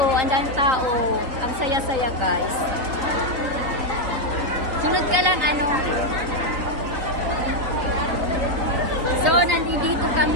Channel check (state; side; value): late; left; 3.9 ms